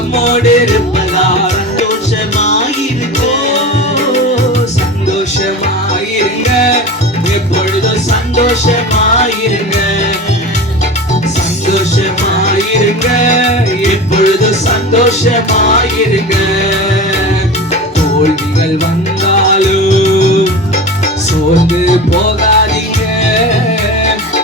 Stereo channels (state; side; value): normal; both; correlation 0.31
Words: இருப்பதா சந்தோஷமாயிருங்க. சந்தோஷமாயிருங்க, எப்பொழுதும் சந்தோஷமாயிருங்க. சந்தோஷமாயிருங்க, எப்பொழுதும் சந்தோஷமாயிருங்க. தோல்விகள் வந்தாலும் சோர்ந்து போகாதீங்க.